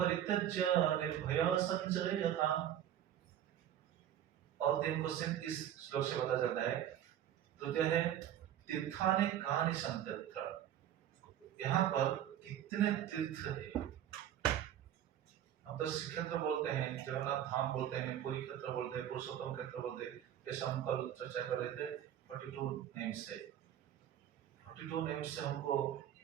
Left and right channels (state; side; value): quieter; left; 10.9 dB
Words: निर्भय संचरे यथा। और 3 क्वेश्चन इस श्लोक से पता चलता है। तृतीय है तीर्थानि कानि सन्तत्र, यहाँ पर कितने तीर्थ है। हम तो श्री क्षेत्र बोलते हैं, जगन्नाथ धाम बोलते हैं, पुरी क्षेत्र बोलते हैं, पुरुषोत्तम क्षेत्र बोलते हैं। जैसे हम कल चर्चा कर रहे थे 42 नेम्स से, 42 नेम्स से हमको